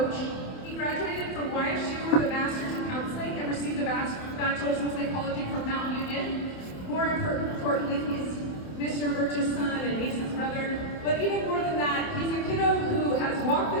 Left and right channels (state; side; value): late; right; 27 ms